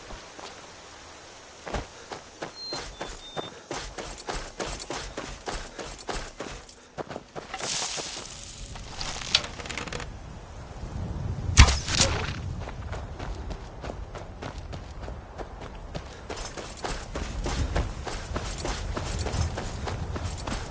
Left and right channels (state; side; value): identical; both; correlation 1.00